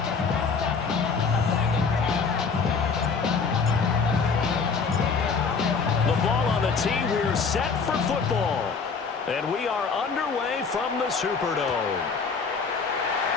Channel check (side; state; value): right; quieter; 5.2 dB